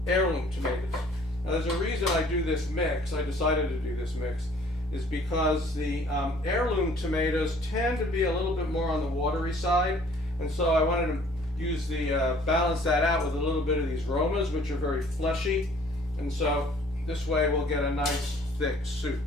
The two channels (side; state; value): both; normal; correlation 0.56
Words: heirloom tomatoes. Now there's a reason I do this mix. I decided to do this mix is because the heirloom tomatoes tend to be a little bit more on the watery side, and so I wanted to use the balance that out with a little bit of these Romas, which are very fleshy, and so this way we'll get a nice thick soup.